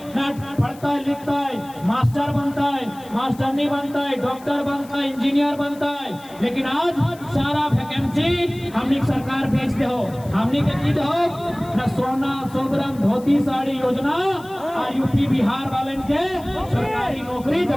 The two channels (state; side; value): noise; left; hiss, 23 dB below the sound